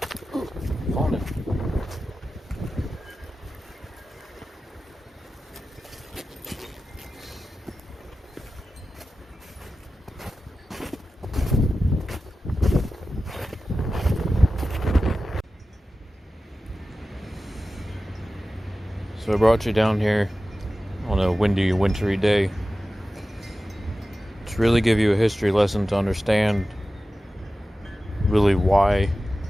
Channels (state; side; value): normal; both; correlation 0.94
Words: I brought you down here on a windy, wintry day to really give you a history lesson to understand really why